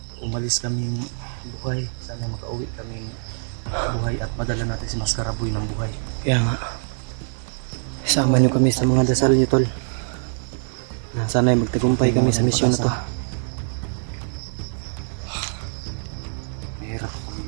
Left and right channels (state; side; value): silent; left; digital silence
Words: Umalis kaming buhay. Sana makauwi kaming buhay at madala natin si Maskaraboy ng buhay. Kaya nga. Sama niyo kami sa mga dasal niyo, tol. Sana ay magtagumpay kami sa misyon na to. Mahirap kami